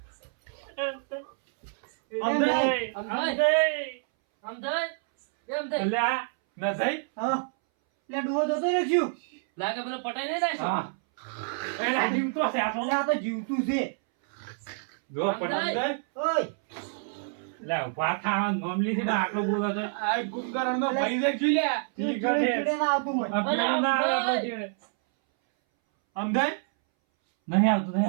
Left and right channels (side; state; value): left; silent; 60 dB below the other